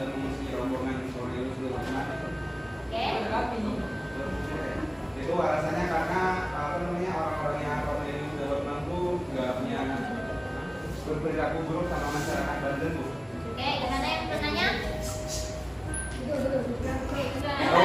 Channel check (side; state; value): both; identical; correlation 1.00